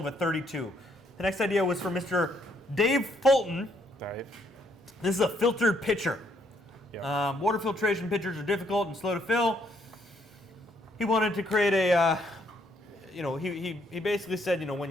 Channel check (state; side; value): normal; both; correlation 0.70